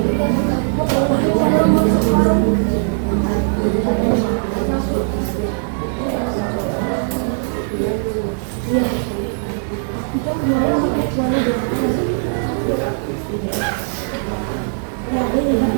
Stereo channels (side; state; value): left; silent; digital silence